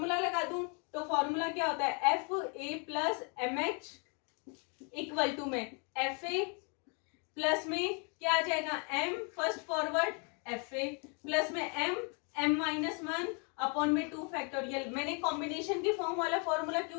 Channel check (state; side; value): quieter; right; 36.8 dB